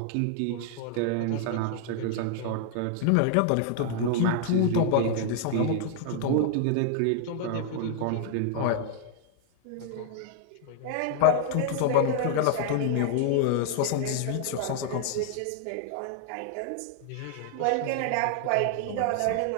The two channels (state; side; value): different; both; correlation 0.00